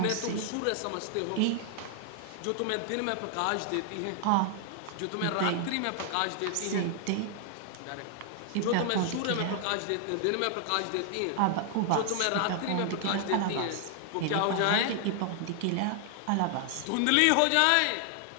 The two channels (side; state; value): both; different; correlation 0.00